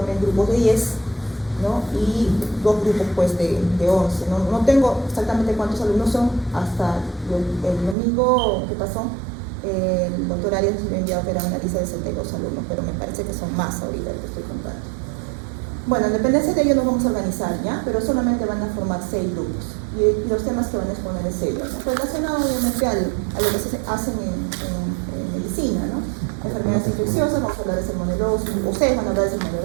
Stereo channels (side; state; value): left; drops out; at 8.0 s